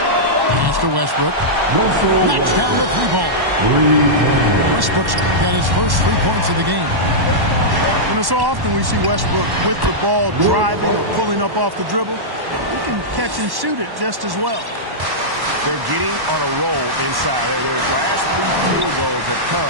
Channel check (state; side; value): late; left; 1.1 ms